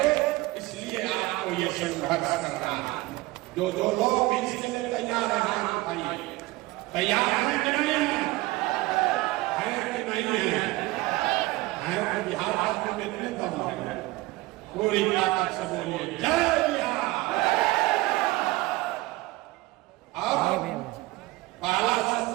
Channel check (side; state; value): left; quieter; 20.2 dB